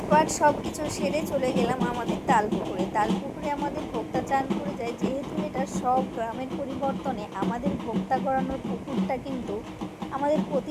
পাট সব কিছু সেরে চলে গেলাম আমাদের তালপুকুরে আমাদের ভোক্তা চান করে যায়। যেহেতু এটা সব গ্রামের পরিবর্তনে আমাদের ভোক্তা গড়ানোর পুকুরটা কিন্তু আমাদের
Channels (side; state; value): both; identical; correlation 1.00